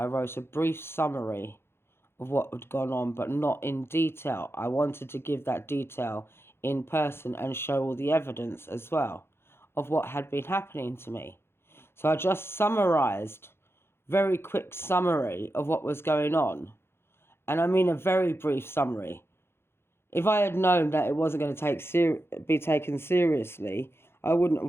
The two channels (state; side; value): late; right; 0.12 ms